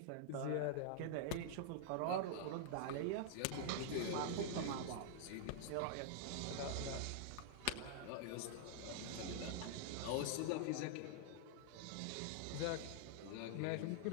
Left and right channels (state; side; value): different; both; correlation -0.01